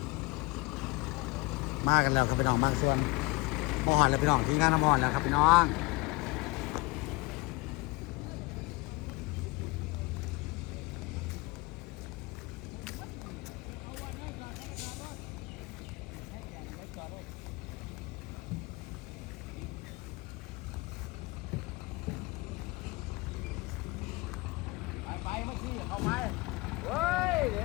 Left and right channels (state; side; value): quieter; right; 24.8 dB